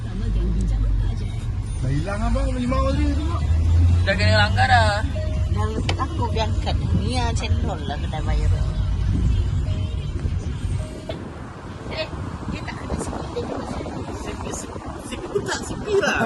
Dah hilang abang, limau tadi tengok. Dah kena langgar dah. Dah aku berangkat. Ni yang cendol lah kedai bayar. Dia tak ada sikit. Dia kena Sipi pun tak sipi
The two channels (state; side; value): identical; both; correlation 1.00